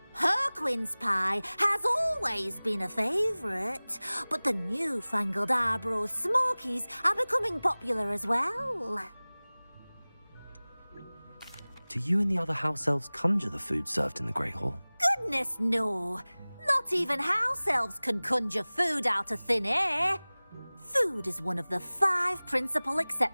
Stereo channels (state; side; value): inverted; both; correlation -1.00